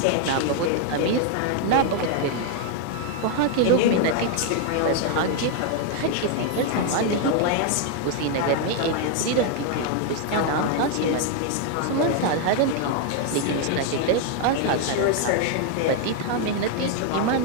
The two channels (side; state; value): both; different; correlation 0.00